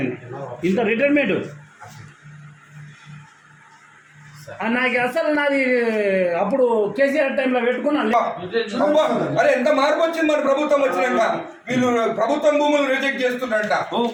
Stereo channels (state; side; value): identical; both; correlation 1.00